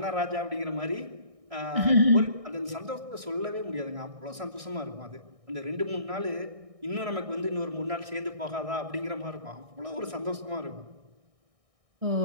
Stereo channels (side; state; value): left; late; 1.6 ms